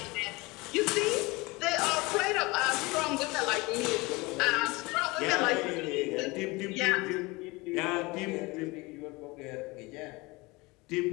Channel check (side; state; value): right; quieter; 23.9 dB